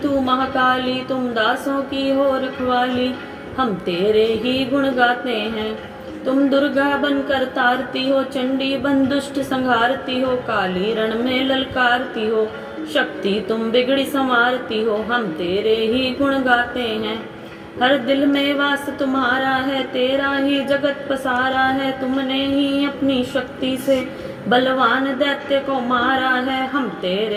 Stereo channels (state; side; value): identical; both; correlation 1.00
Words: महाकाली, तुम दासों की हो रखवाली। हम तेरे ही गुण गाते हैं, तुम दुर्गा बनकर तारती हो, चंडी बन दुष्ट संहारती हो, काली रण में ललकारती हो, शक्ति तुम बिगड़ी संवारती हो। हम तेरे ही गुण गाते हैं, हर दिल में वास तुम्हारा है, तेरा ही जगत पसारा है। तुमने ही अपनी शक्ति से बलवान दैत्य को मारा है, हम